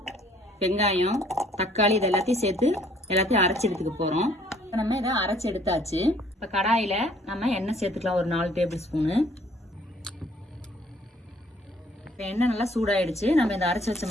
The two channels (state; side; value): normal; both; correlation 0.60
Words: வெங்காயம், தக்காளி இது எல்லாத்தையும் சேர்த்து எல்லாத்தையும் அரைச்சி எடுத்துக்க போறோம். நம்ம இதை அரைச்சி எடுத்தாச்சு. இப்போ கடாயில நம்ம எண்ணெய் சேர்த்துக்கலாம். ஒரு 4 டேபிள் ஸ்பூனு. இப்போ எண்ணெய் நல்லா சூடாயிடுச்சு. நம்ம இதை அரைச்சி வச்ச